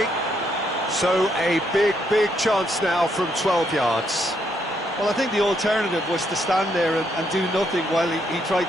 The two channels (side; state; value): both; normal; correlation 0.75